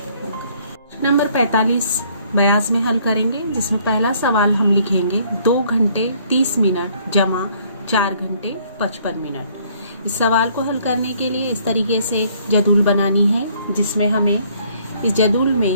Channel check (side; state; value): both; inverted; correlation -0.63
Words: नंबर 45 बयास में हल करेंगे, जिसमें पहला सवाल हम लिखेंगे 2 घंटे 30 मिनट जमा 4 घंटे 55 मिनट। इस सवाल को हल करने के लिए इस तरीके से एक जदूल बनानी है, जिसमें हमें इस जदूल